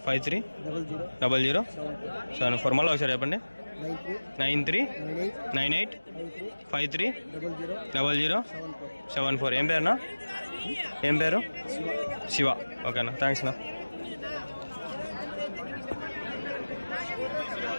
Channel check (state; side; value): inverted; both; correlation -1.00